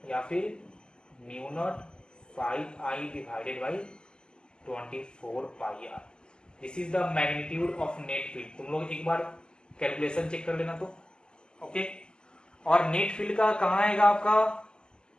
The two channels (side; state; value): right; late; 0.047 ms